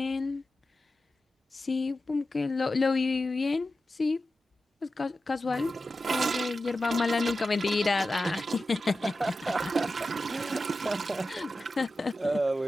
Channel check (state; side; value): normal; both; correlation 0.92